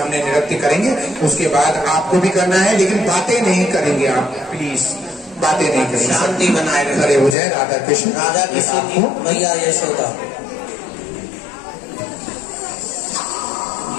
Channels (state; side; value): drops out; right; at 7.4 s